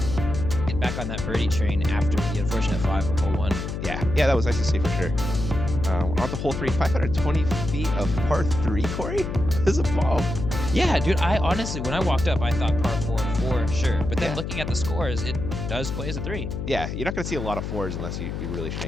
back on that birdie train after the unfortunate 5 on hole 1. Yeah, that was nice to see for sure. On the hole 3, 520 feet of par 3, Corey? This is a bomb. Yeah, dude, I honestly, when I walked up, I thought par 4 for sure. But then Yeah. looking at the scores, it does play as a 3. Yeah, you're not going to see a lot of 4s unless you really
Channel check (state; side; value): noise; left; hum, 5 dB below the sound